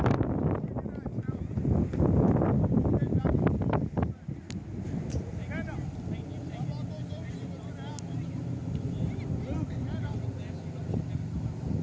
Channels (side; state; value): both; identical; correlation 1.00